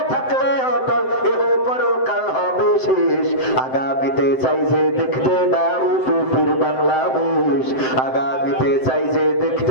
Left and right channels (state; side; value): late; right; 7.8 ms